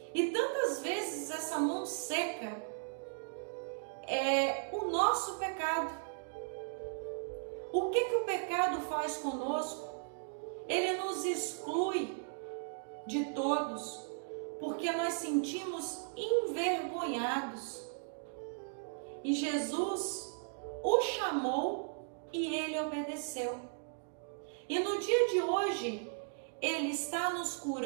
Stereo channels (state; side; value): silent; left; digital silence